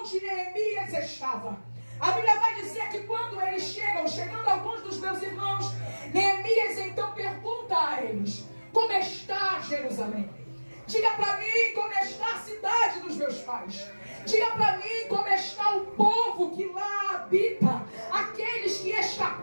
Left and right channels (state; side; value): inverted; both; correlation -1.00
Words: Neemias estava. A Bíblia vai dizer que quando eles chegando alguns dos meus irmãos, Neemias então pergunta a eles: como está Jerusalém? Diga para mim como está a cidade dos meus pais. Diga para mim como está o povo que lá habita, aqueles que